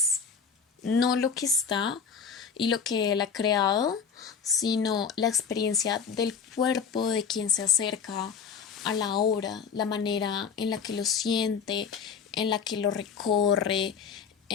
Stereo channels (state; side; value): quieter; right; 6.3 dB